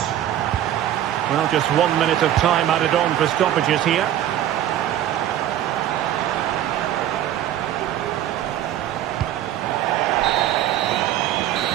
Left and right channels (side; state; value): left; quieter; 11.9 dB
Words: Well, just 1 minute of time added on for stoppages here.